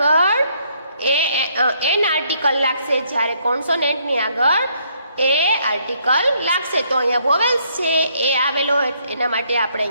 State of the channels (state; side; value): inverted; both; correlation -0.70